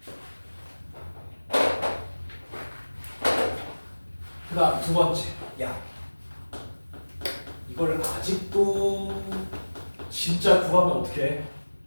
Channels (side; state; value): both; inverted; correlation -1.00